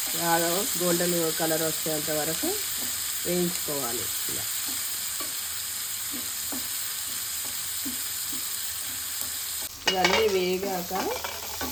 గోల్డెన్ కలర్ వచ్చేంత వరకు వేయించుకోవాలి. ఇలా ఇవన్నీ వేగాక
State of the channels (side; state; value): both; identical; correlation 1.00